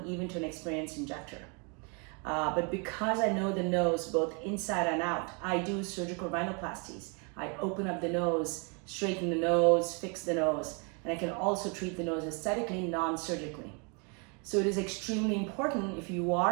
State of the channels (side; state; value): left; quieter; 34.7 dB